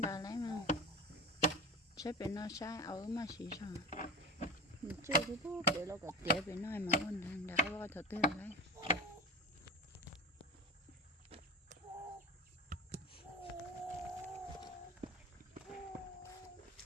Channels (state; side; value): normal; both; correlation 0.30